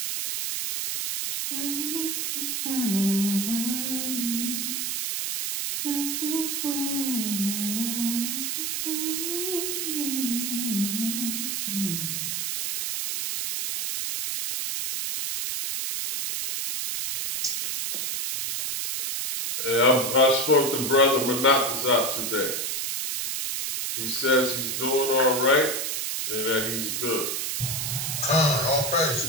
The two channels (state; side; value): noise; right; hiss, 1 dB below the sound